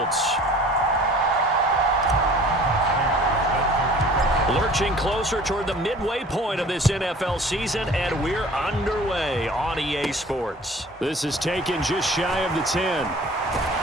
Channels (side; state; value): both; normal; correlation 0.47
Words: Lurching closer toward the midway point of this NFL season, and we're underway on EA Sports. This is taken just shy of the 10.